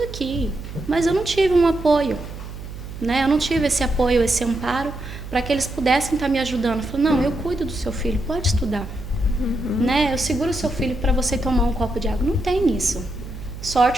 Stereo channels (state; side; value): noise; right; hum, 11 dB below the sound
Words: aqui, mas eu não tive um apoio, né? Eu não tive esse apoio, esse amparo, para que eles pudessem estar me ajudando. Eu falei, não, eu cuido do seu filho, pode estudar. Né? Eu seguro o seu filho para você tomar um copo de água. Não tem isso.